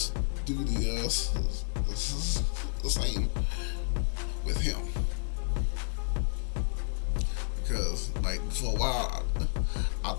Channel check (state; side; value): silent; right; digital silence